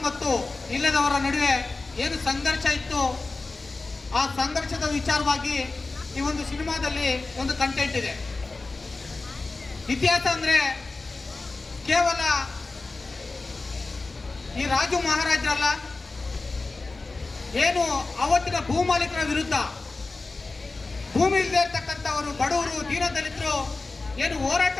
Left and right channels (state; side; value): quieter; right; 3.6 dB